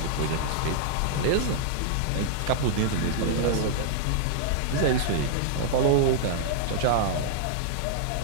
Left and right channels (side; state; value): both; different; correlation -0.01